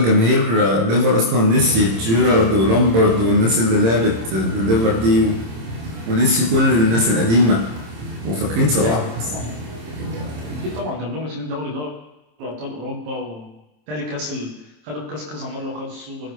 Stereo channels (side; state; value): left; late; 26 ms